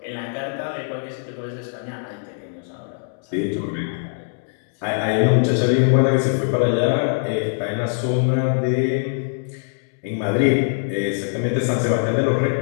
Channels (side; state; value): right; silent; digital silence